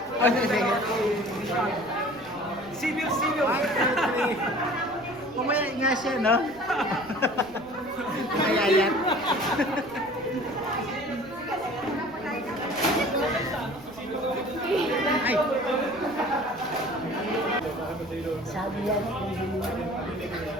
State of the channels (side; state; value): right; noise; rumble, 24 dB below the sound